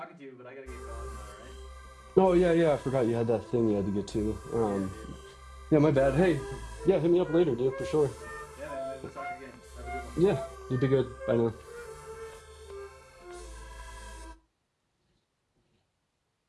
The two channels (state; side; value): identical; both; correlation 1.00